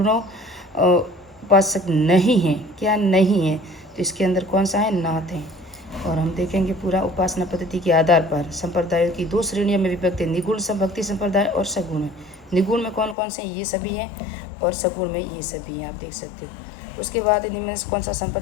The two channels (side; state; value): right; drops out; at 13.2 s